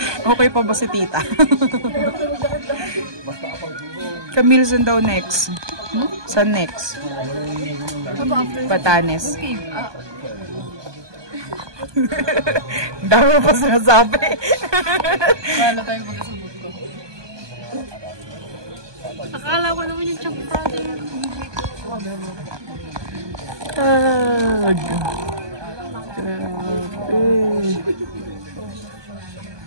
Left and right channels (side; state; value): left; late; 1.2 ms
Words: Okay pa ba si tita? Camille, saan daw next? Saan next? Batanes. Dami mo pa sinasabi. Wala tayong magkasabot ko. Akala ko naman yung chunk Friday. Tag. Grabe.